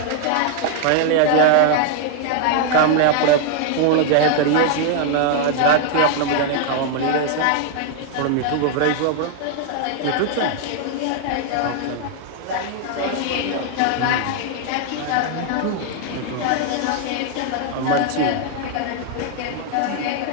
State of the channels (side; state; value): both; different; correlation 0.00